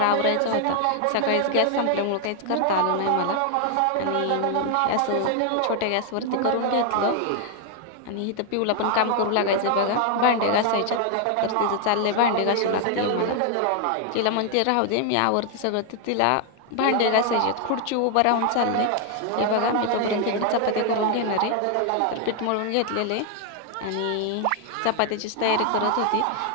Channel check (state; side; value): different; both; correlation 0.00